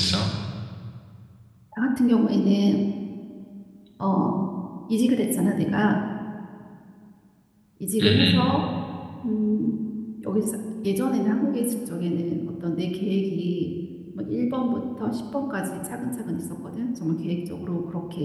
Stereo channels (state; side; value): identical; both; correlation 1.00